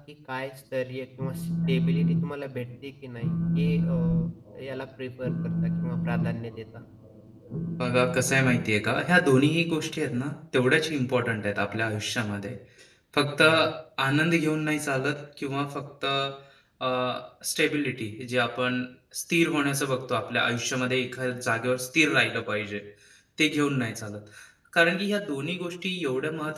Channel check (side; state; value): both; identical; correlation 1.00